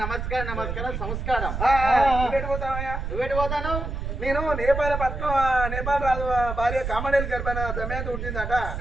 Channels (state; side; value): noise; right; rumble, 4 dB below the sound